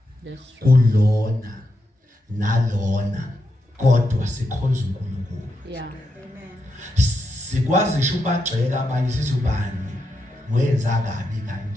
kulona nalona kodwa sikhonza uNkulunkulu. Yeah. Sikwazi ngisho ubagxeka abanye sithi ubani wenza kabi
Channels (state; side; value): normal; both; correlation 0.84